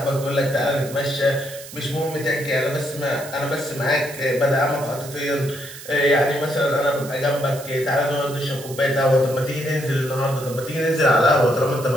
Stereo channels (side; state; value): right; noise; hiss, 15 dB below the sound